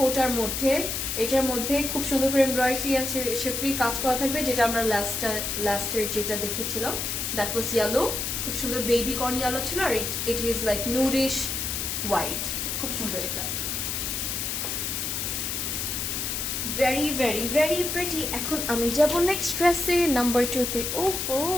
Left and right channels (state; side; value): noise; left; hiss, 2 dB below the sound